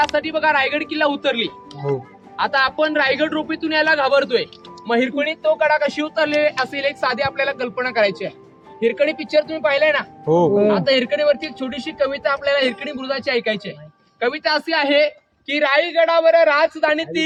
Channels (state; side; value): identical; both; correlation 1.00